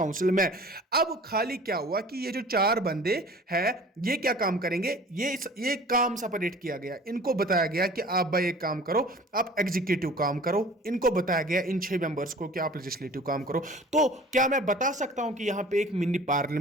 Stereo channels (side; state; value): both; normal; correlation 0.45